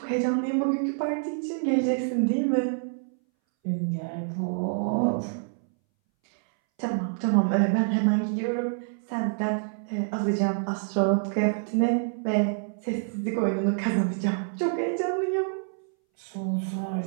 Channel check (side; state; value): left; silent; 60 dB below the other